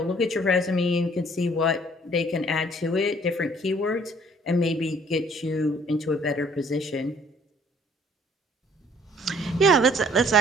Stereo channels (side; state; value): both; normal; correlation 0.58